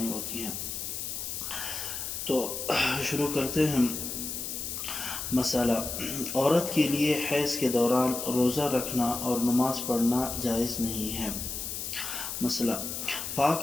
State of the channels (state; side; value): noise; left; hiss, 5 dB below the sound